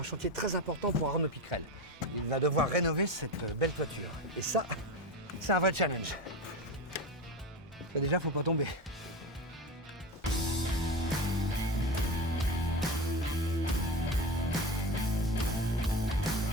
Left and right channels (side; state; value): both; normal; correlation 0.23